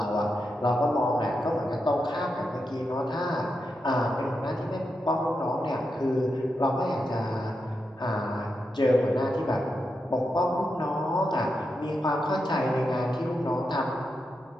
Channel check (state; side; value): normal; both; correlation 0.86